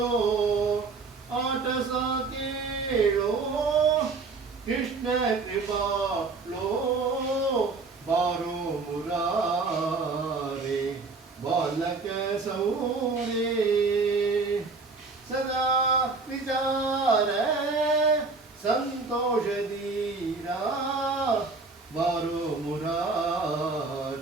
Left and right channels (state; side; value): quieter; left; 4.1 dB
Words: ಆಟ ಸಾಕೇಳೋ ಕೃಷ್ಣ ಕೃಪಾಳೋ ಬಾರೋ ಮುರಾರೆ ಬಾಲಕ ಸೌರೇ सदा विचार संतोष दीरा बारो